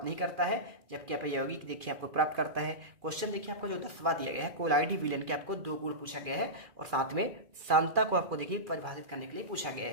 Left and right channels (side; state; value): left; late; 2.4 ms